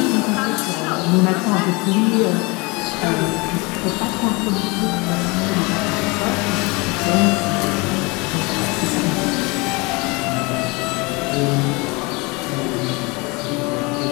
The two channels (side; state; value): right; quieter; 26.8 dB